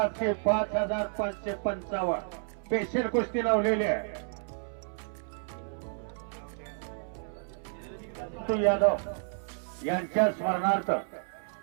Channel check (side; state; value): left; silent; 57 dB below the other